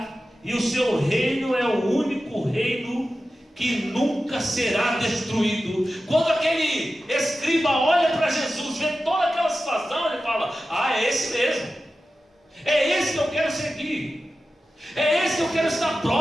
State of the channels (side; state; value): both; normal; correlation 0.93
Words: e o seu reino é o único reino que nunca será destruído. Quando aquele escriba olha para Jesus, vê toda aquela situação, ele fala: ah, é esse mesmo, é esse que eu quero seguir, é esse que eu quero estar